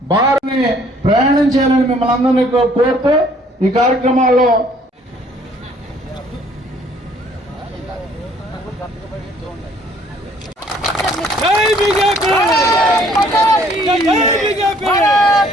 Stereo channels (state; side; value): normal; both; correlation 0.60